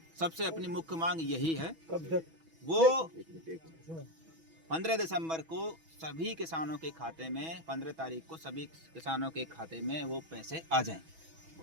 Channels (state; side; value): late; left; 6.1 ms